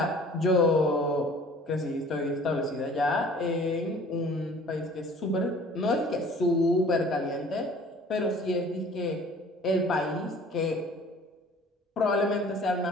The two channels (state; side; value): normal; both; correlation 0.50